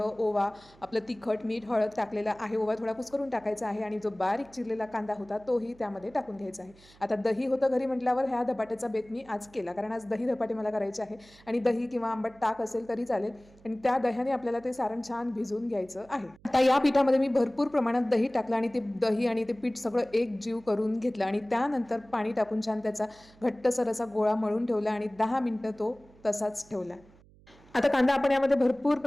ओवा, आपलं तिखट, मीठ, हळद टाकलेलं आहे. ओवा थोडा कुस्करून टाकायचा आहे आणि जो बारीक चिरलेला कांदा होता तोही त्यामध्ये टाकून घ्यायचा आहे. आता दही होतं घरी म्हटल्यावर ह्या धपाट्याचा बेत मी आज केला, कारण आज दही धपाटे मला करायचे आहे आणि दही किंवा आंबट ताक असेल तरी चालेल आणि त्या दह्याने आपल्याला ते सारण छान भिजवून घ्यायचं आहे. आता या पिठामध्ये मी भरपूर प्रमाणात दही टाकलं आणि ते दही आणि ते पीठ सगळं एक जीव करून घेतलं आणि त्यानंतर पाणी टाकून छान त्याचा घट्टसर असा गोळा मळून ठेवला आणि 10 मिनिटं तो तसाच ठेवला. आता कांदा आपण यामध्ये भरपूर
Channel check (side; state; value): right; noise; hum, 26 dB below the sound